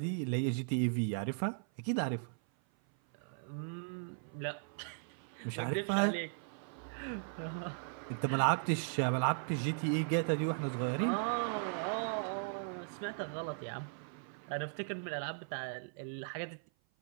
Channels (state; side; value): silent; left; 53 dB below the other